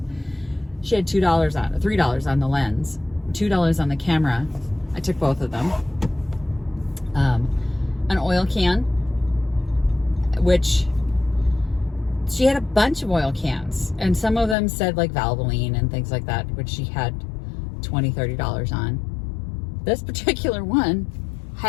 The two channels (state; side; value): drops out; right; at 14.6 s